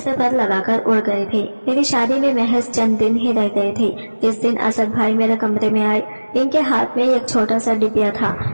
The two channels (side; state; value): both; inverted; correlation -1.00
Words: पर लगाकर उड़ गए थे। मेरी शादी में महज चंद दिन ही रह गए थे। इस दिन असद भाई मेरे कमरे में आए। इनके हाथ में एक छोटा सा डिब्बा था।